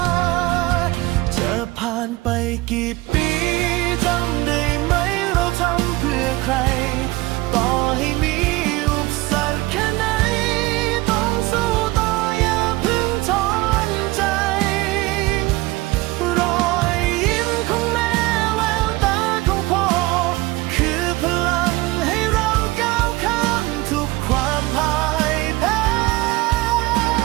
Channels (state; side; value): quieter; left; 20.2 dB